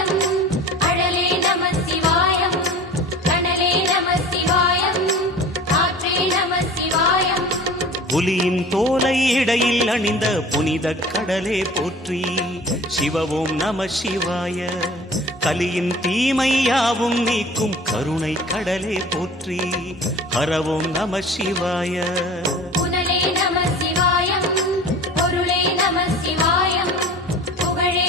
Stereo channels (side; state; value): both; normal; correlation 0.41